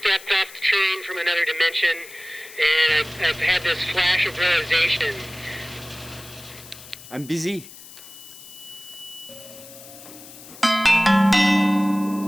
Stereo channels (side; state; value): left; noise; hiss, 18 dB below the sound